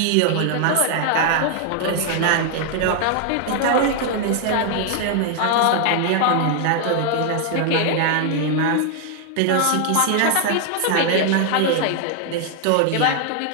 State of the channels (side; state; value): both; different; correlation 0.00